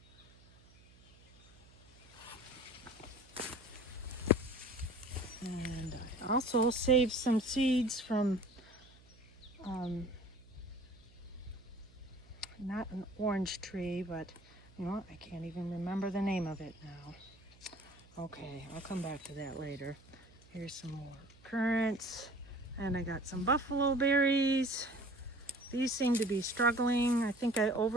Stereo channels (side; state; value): right; noise; hum, 25 dB below the sound